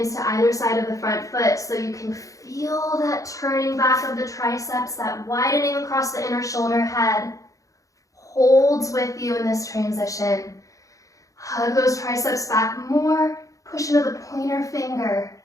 to either side of the front foot so you can feel that turning back of the triceps, that widening across the inner shoulder head. Holds with you in this transition. Hug those triceps back more. Push into the pointer finger.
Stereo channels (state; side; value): late; right; 0.16 ms